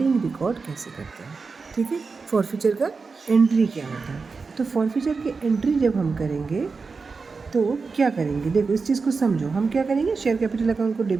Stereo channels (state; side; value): quieter; left; 4.6 dB